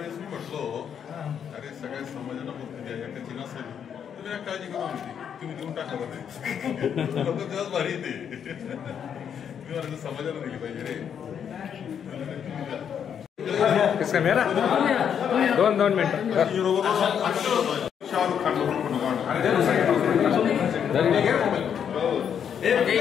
मी म्हटलो, अरे सगळ्या समाजाला मुक्ती द्या, एकाची नसेल तुम्ही काळजी करू नका, तुम्ही देऊन टाका बरं. लोक तेव्हाच भारी येते. मी म्हणाल समाजाला दिली पाहिजे रे. किसका मेरा 2 मिनिट. शाहरुख खान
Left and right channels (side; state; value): right; quieter; 8.2 dB